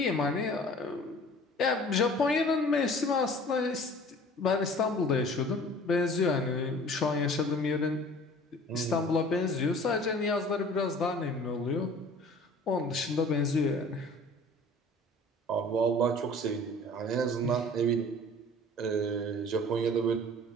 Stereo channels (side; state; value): both; normal; correlation 0.47